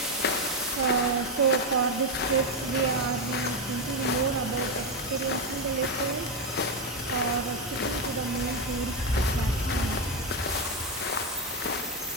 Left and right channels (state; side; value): normal; both; correlation 0.07